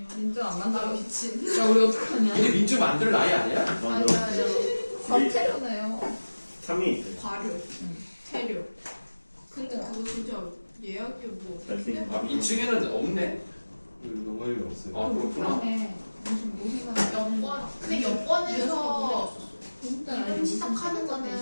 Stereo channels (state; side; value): inverted; both; correlation -1.00